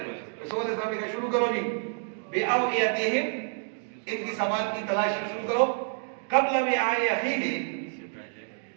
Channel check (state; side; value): silent; left; 59 dB below the other